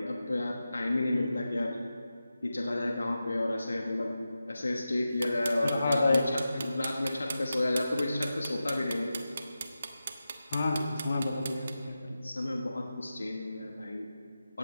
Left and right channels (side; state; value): both; inverted; correlation -0.92